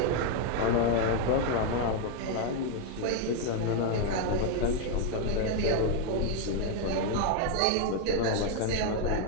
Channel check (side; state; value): both; different; correlation 0.00